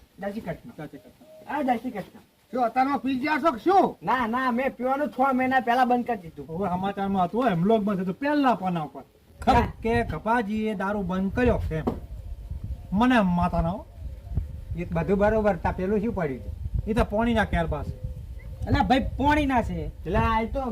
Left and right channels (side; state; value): both; identical; correlation 1.00